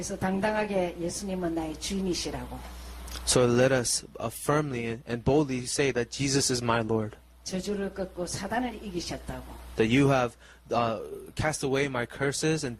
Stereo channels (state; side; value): identical; both; correlation 1.00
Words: 당당하게 예수님은 나의 주인이시라고. So let us firmly and boldly say that Jesus is my Lord. 저주를 꺾고 사단을 이기셨다고. That you have cast away my curses and